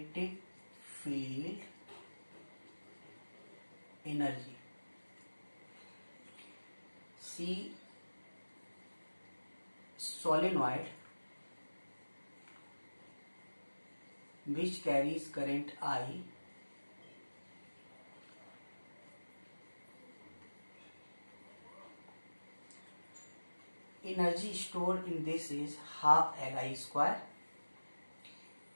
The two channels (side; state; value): both; inverted; correlation -1.00